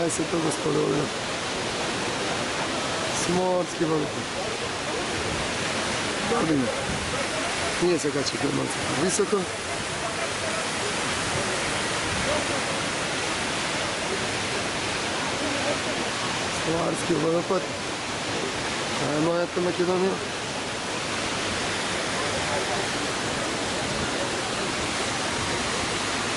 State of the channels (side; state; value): both; identical; correlation 1.00